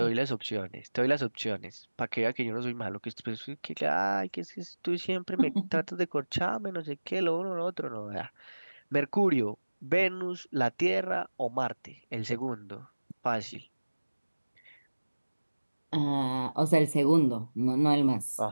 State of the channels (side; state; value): both; inverted; correlation -1.00